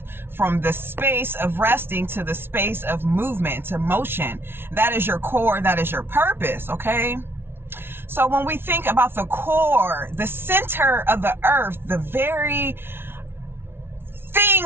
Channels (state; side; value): late; left; 0.11 ms